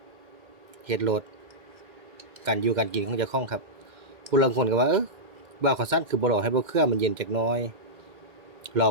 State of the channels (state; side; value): late; left; 2.1 ms